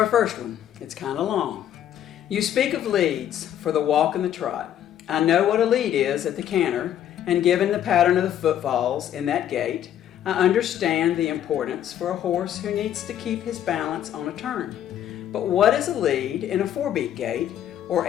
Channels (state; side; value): quieter; right; 10.8 dB